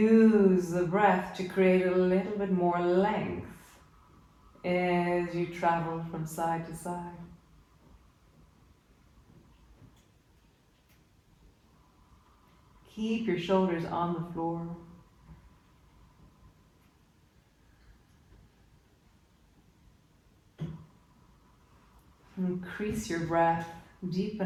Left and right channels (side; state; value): both; identical; correlation 1.00